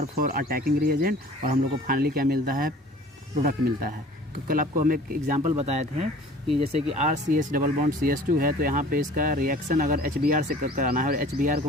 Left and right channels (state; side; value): normal; both; correlation 0.47